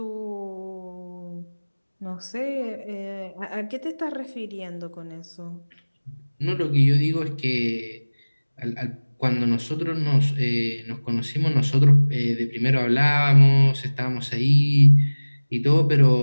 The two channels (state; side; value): inverted; both; correlation -1.00